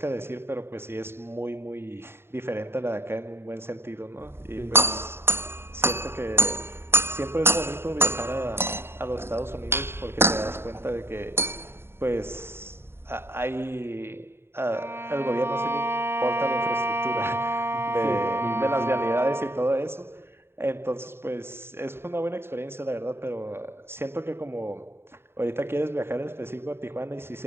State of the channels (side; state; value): left; late; 0.11 ms